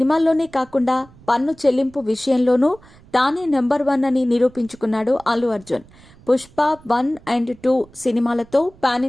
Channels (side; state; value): right; noise; rumble, 25 dB below the sound